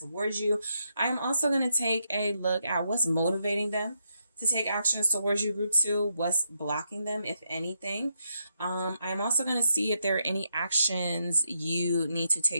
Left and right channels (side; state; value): both; inverted; correlation -0.80